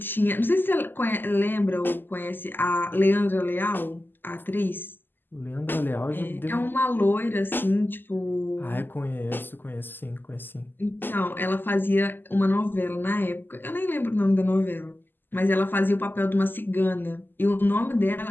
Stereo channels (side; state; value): right; late; 0.093 ms